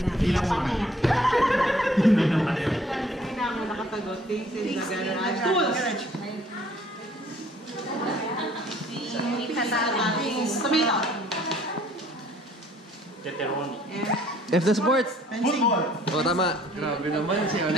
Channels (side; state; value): both; normal; correlation 0.59